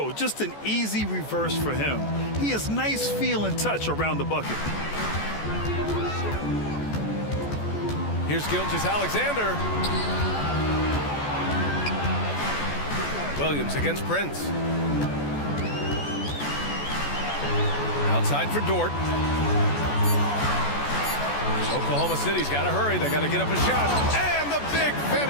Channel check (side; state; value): right; late; 14 ms